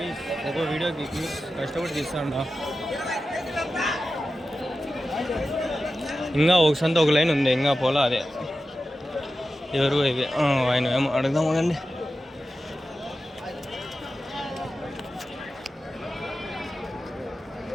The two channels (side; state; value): both; normal; correlation 0.92